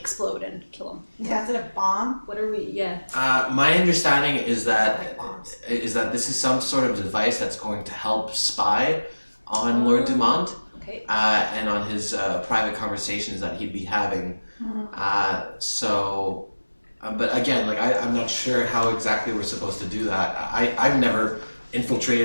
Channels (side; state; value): both; inverted; correlation -1.00